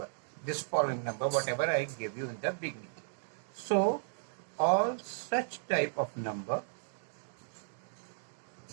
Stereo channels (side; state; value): left; silent; digital silence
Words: This following number, whatever I gave you in the beginning. So all such type of number